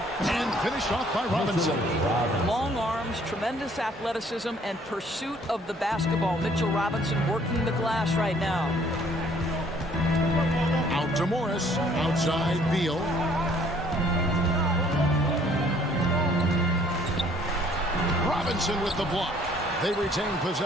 And finished off by Robinson. Long arms, tremendous athleticism, and pursuit of the basketball. Mitchell Robinson working the glass right now. Out to Morris. Outside Beal. Robinson with the block. They retain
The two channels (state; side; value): normal; both; correlation 0.60